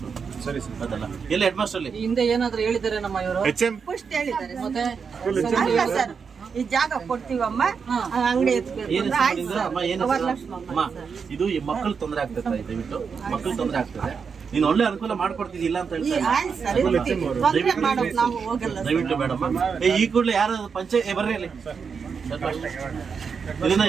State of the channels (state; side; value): quieter; left; 6.0 dB